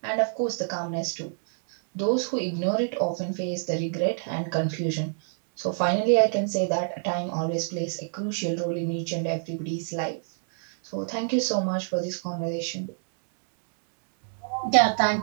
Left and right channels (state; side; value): silent; left; 60 dB below the other